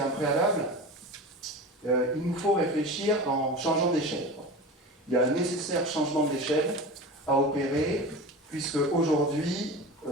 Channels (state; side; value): normal; both; correlation 0.31